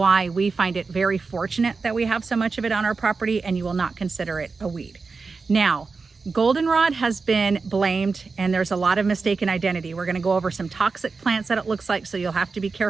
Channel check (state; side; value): quieter; left; 4.4 dB